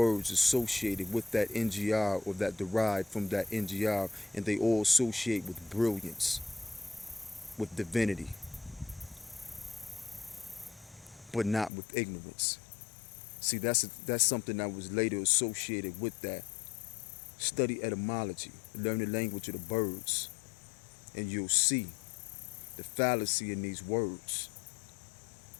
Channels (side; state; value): right; drops out; at 11.7 s